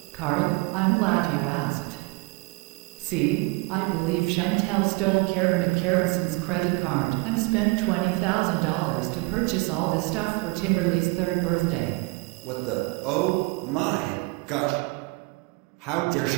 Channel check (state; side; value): quieter; left; 26.3 dB